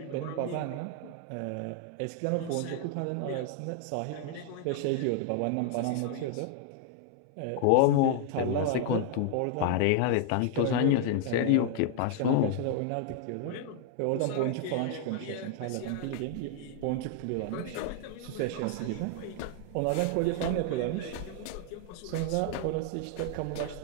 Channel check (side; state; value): both; different; correlation 0.00